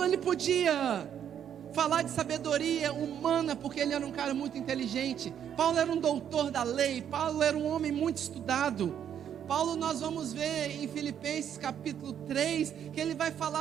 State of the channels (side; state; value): left; quieter; 9.2 dB